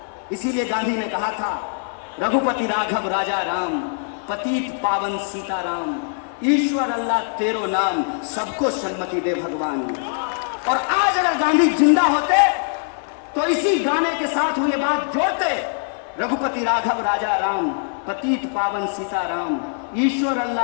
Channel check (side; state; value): right; silent; 61 dB below the other